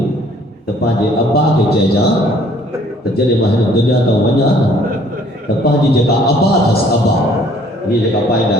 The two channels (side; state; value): both; normal; correlation 0.59